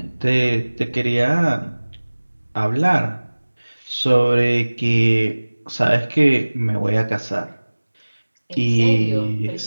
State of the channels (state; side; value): inverted; both; correlation -1.00